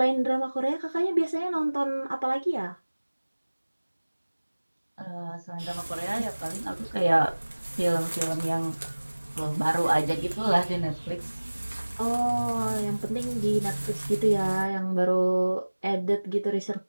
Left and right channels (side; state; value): both; inverted; correlation -1.00